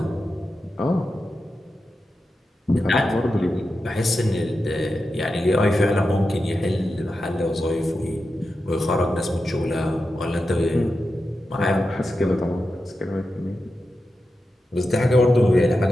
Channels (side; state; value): both; normal; correlation 0.90